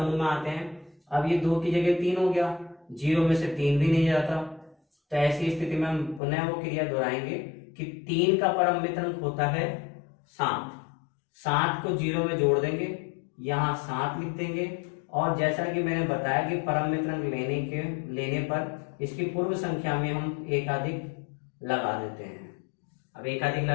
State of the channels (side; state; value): right; drops out; at 6.2 s